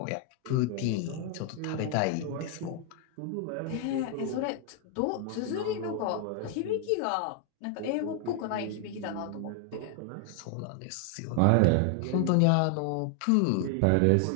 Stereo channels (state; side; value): different; both; correlation 0.00